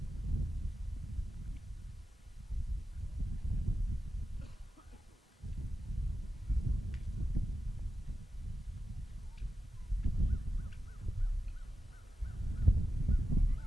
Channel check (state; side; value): normal; both; correlation 0.91